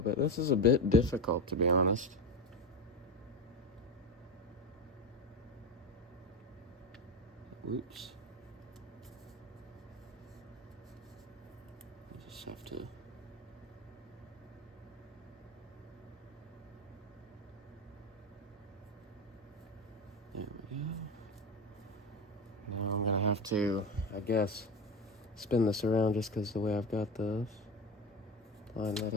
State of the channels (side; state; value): both; normal; correlation 0.21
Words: bit. This is a bit difficult, to be honest. Oops. I just have to. There we go. Now I'm gonna have to, I guess, spin this around just because the way I've got this. Line that